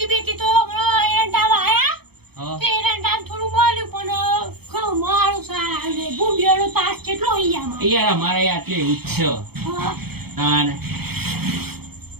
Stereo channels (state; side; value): late; left; 0.96 ms